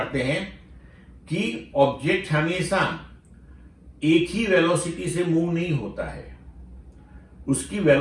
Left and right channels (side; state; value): both; identical; correlation 1.00